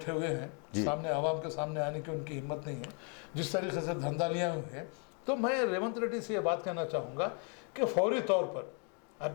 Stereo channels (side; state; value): right; quieter; 38.4 dB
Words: हुए हैं, सामने आवाम के सामने आने की उनकी हिम्मत नहीं है, जिस तरीके से धंधा लिया हुए हैं, तो मैं रेवंत रेड्डी से ये बात कहना चाहूँगा कि फौरी तौर पर अब